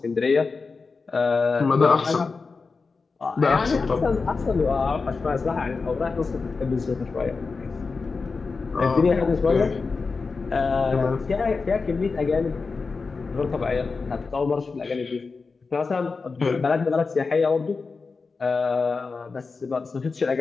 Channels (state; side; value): quieter; right; 4.4 dB